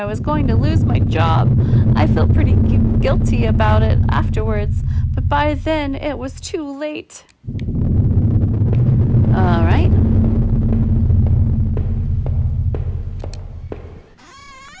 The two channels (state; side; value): identical; both; correlation 1.00